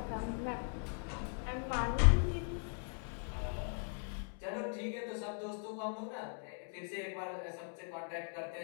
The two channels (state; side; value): silent; right; 52 dB below the other